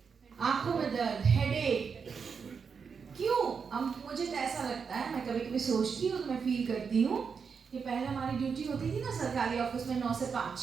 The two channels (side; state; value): left; quieter; 6.0 dB